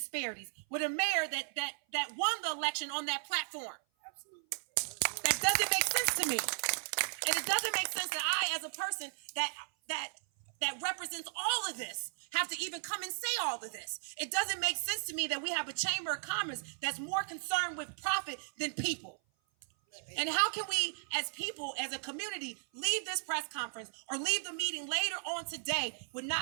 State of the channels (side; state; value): left; silent; 54 dB below the other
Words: with a mayor that won the election on that platform. Absolutely. That doesn't make sense to me. And it doesn't make sense that I, as a person that represents all of this, have to even come and say all of this. It doesn't make sense to me that we have a chamber of commerce that's more concerned with profit than people. And how can we, as people, as a community, leave this press conference or leave the meeting later on today with